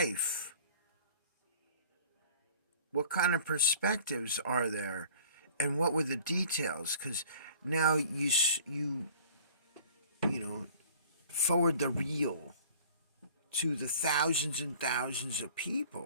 what kind of perspectives are there, and what were the details? Because now you know, forward the reel to the thousands and thousands of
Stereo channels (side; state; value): both; inverted; correlation -0.49